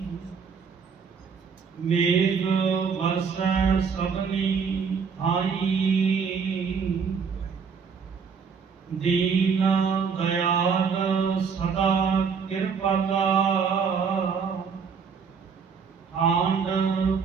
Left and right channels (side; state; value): left; quieter; 6.0 dB